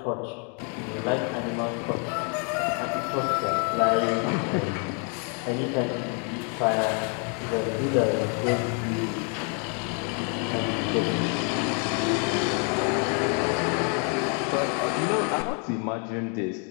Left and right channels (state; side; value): quieter; right; 39.4 dB